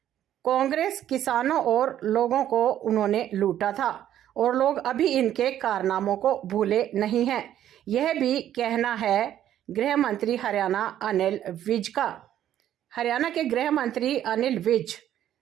कांग्रेस किसानों और लोगों को उन्होंने लूटा था और लोग अभी इनके कारनामों को भूले नहीं हैं। यह भी कहना है गृह मंत्री हरियाणा अनिल विज का। हरियाणा के गृह मंत्री अनिल विज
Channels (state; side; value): quieter; left; 11.4 dB